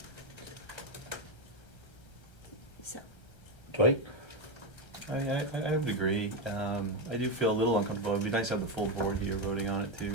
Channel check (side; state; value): right; late; 1.3 ms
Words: So, Dwight? I would agree. I do feel a little uncomfortable. It'd be nice to have the full board here voting on it